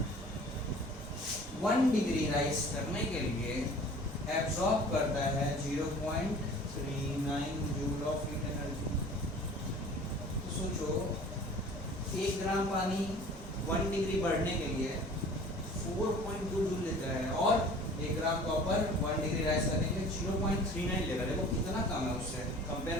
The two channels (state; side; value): normal; both; correlation 0.46